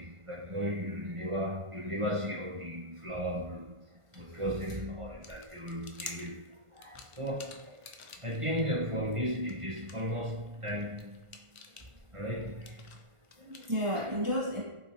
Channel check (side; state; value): left; late; 1.4 ms